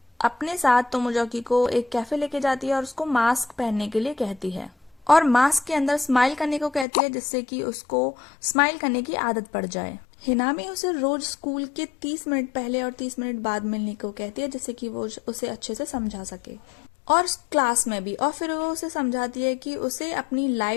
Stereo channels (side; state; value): right; drops out; at 6.9 s